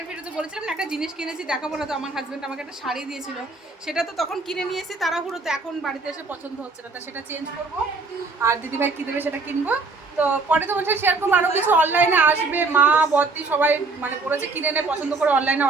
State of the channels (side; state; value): left; quieter; 3.8 dB